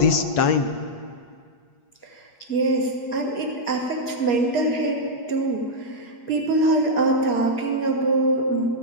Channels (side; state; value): right; late; 8.4 ms